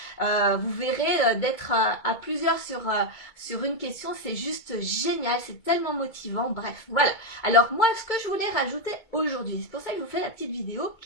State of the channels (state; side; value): late; right; 2.2 ms